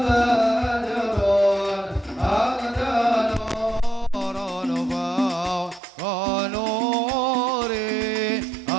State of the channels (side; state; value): left; drops out; at 5.8 s